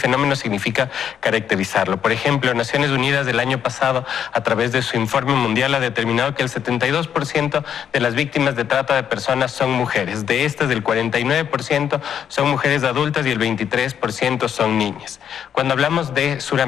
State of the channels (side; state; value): right; quieter; 8.7 dB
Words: significa caracterizarlo. Por ejemplo, Naciones Unidas del año pasado, a través de su informe mundial, ha determinado que el 72% de las víctimas de trata de personas son mujeres. De estas, el 49% son mujeres adultas y el 23% son niñas. Cuando hablamos de